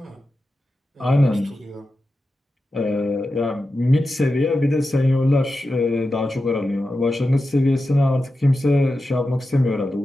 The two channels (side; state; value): both; normal; correlation 0.91